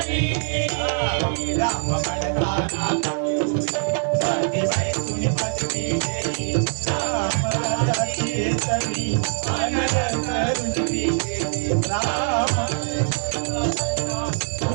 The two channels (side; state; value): left; silent; digital silence